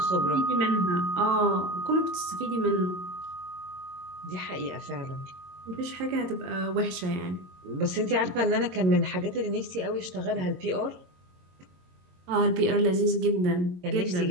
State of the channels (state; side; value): late; left; 22 ms